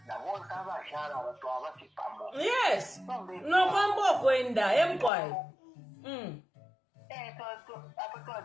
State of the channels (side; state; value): right; drops out; at 5.1 s